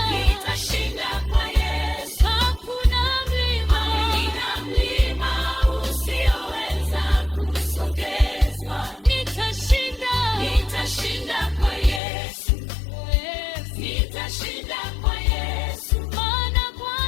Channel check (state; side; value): drops out; right; at 12.0 s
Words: nitashinda kwa Yesu. hakuna mlima, Hakuna mlima usioweza kusogezwa. nitashinda, Nitashinda kwa Yesu, Yesu. nitashinda kwa Yesu. Maana